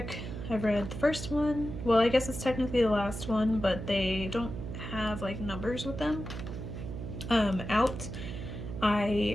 I've read the first one. Well, I guess it's technically the last one, but they don't have like numbers with them. Out,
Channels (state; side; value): noise; right; hum, 7 dB below the sound